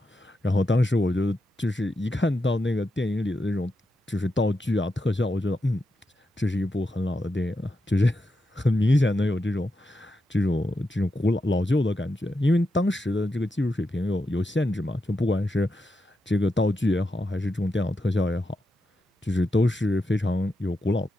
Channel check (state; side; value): normal; both; correlation 0.86